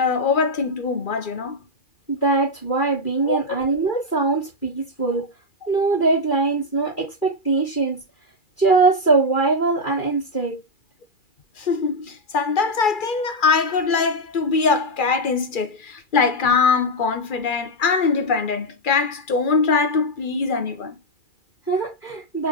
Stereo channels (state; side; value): late; right; 2.4 ms